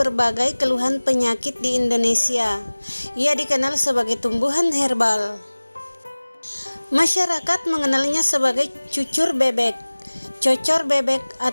keluhan penyakit di Indonesia. Ia dikenal sebagai tumbuhan herbal. Masyarakat mengenalnya sebagai cucur bebek, cocor bebek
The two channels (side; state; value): both; inverted; correlation -1.00